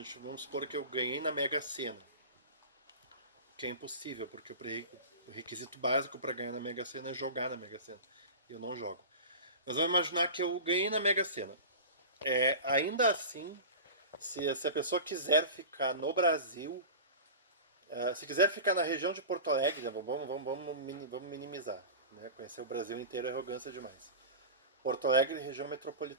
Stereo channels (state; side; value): inverted; both; correlation -0.32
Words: vamos supor que eu ganhei na Mega Sena, que é impossível, porque o requisito básico para ganhar na Mega Sena é jogar na Mega Sena. E eu não jogo. Mas vamos imaginar que eu ganhei na Mega Sena. Ainda assim, se a pessoa quiser ficar no Brasil, se quiser ficar na região de Porto Alegre, né, vamos minimizar. Né? Conhecer o Brasil inteiro é arrogância demais. Porto Alegre, região